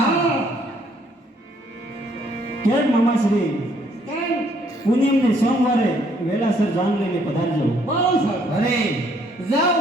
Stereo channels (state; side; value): normal; both; correlation 0.66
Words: કેમ મામાશ્રી કેમ પૂનમને સોમવારે વેલાસર જાન લઈને પધારજો. બહુ સરસ. અરે જાઓ